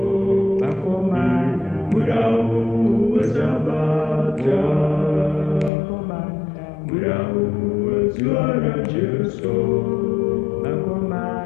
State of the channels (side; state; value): right; drops out; at 5.7 s